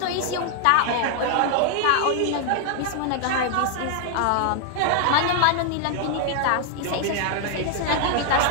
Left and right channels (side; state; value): both; different; correlation 0.00